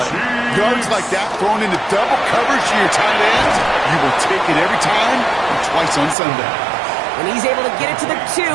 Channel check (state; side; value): drops out; left; at 6.2 s